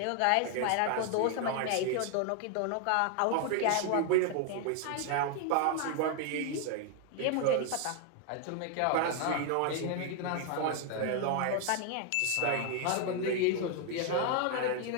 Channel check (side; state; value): both; different; correlation 0.00